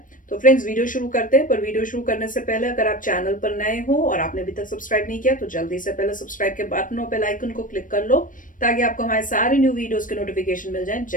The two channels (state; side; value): late; right; 0.38 ms